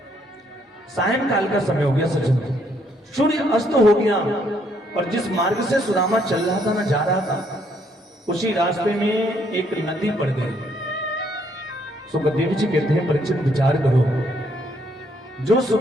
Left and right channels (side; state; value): both; normal; correlation 0.70